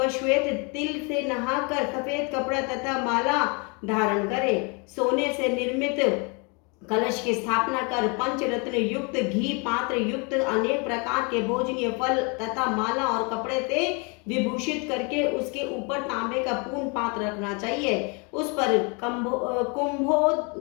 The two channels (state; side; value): quieter; right; 32.7 dB